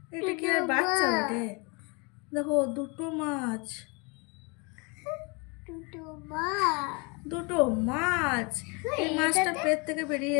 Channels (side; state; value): right; quieter; 30.3 dB